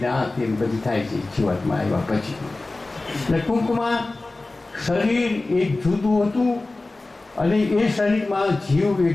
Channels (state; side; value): quieter; right; 3.1 dB